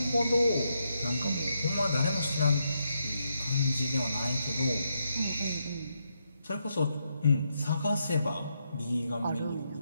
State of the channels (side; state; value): both; inverted; correlation -0.81